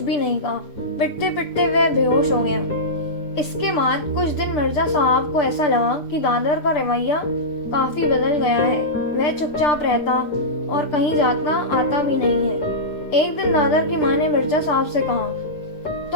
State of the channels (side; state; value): right; late; 6.7 ms